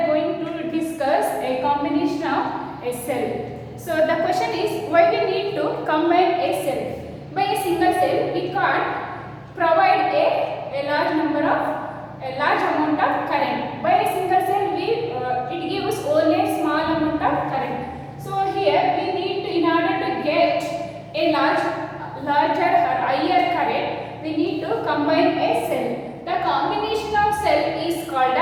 going to discuss a combination of a cell. So the question is, why we need to combine a cell? By a single cell, we can't provide a large amount of current. By a single cell, it gives only a small amount of current. So here we need to, in order to get a larger or higher current, we need to combine a cell. The combination of cell is called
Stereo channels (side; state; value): both; identical; correlation 1.00